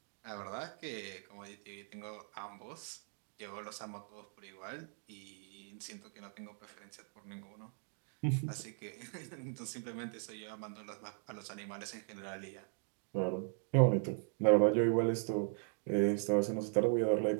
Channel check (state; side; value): silent; left; 52 dB below the other